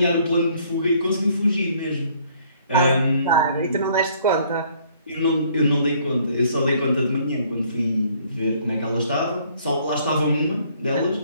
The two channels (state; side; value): inverted; both; correlation -0.62